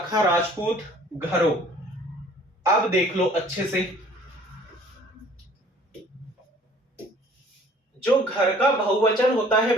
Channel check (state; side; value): normal; both; correlation 0.53